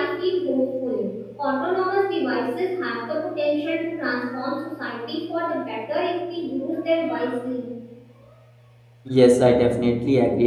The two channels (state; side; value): identical; both; correlation 1.00